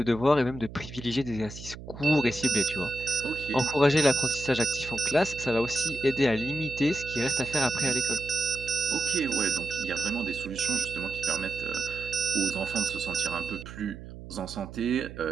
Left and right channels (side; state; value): right; noise; hum, 13 dB below the sound